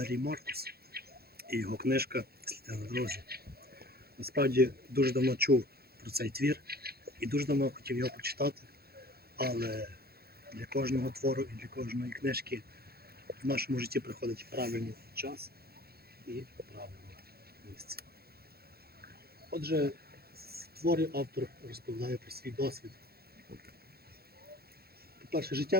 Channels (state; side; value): late; left; 0.46 ms